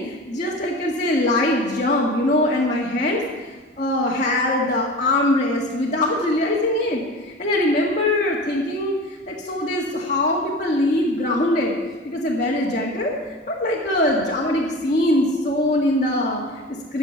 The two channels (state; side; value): normal; both; correlation 0.34